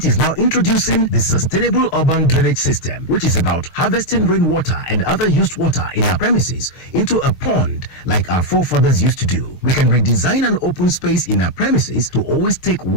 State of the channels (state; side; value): late; right; 6.5 ms